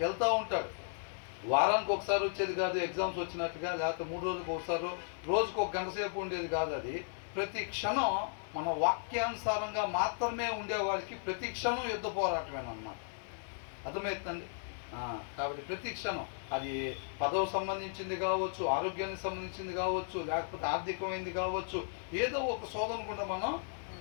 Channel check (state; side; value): silent; right; digital silence